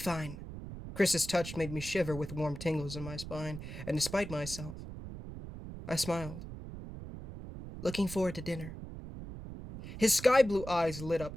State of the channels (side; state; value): right; noise; rumble, 10 dB below the sound